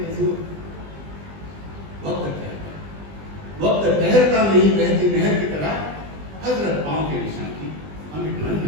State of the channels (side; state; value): left; late; 20 ms